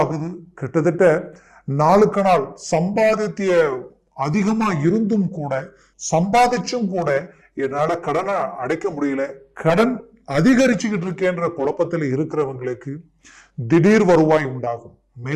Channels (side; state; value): both; identical; correlation 1.00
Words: கிட்டத்தட்ட நாளுக்கு நாள் சம்பாதித்திய அதிகமா இருந்தும் கூட சம்பாதிச்சும் கூட என்னால கடனை அடைக்க முடியல, கடன் அதிகரிச்சுக்கிட்டு இருக்கேன்ற குழப்பத்தில் இருக்கிறவங்களுக்கு திடீர் வருவாய் உண்டாகும்.